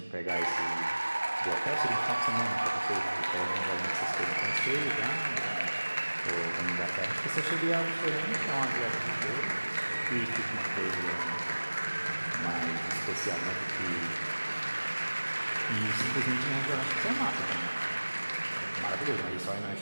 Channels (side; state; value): both; inverted; correlation -1.00